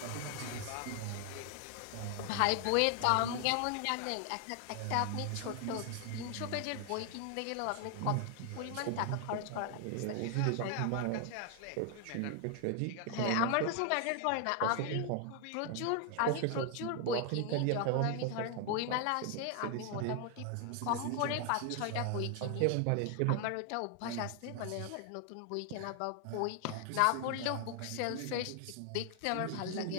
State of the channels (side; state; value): both; different; correlation 0.00